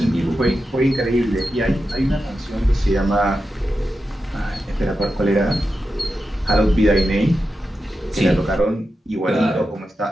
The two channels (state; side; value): normal; both; correlation 0.90